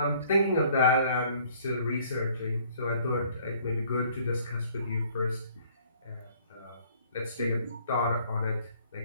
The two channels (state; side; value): inverted; both; correlation -0.59